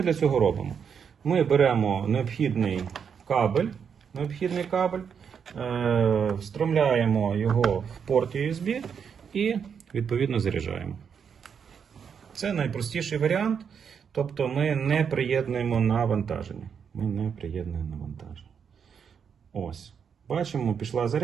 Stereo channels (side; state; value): left; quieter; 7.0 dB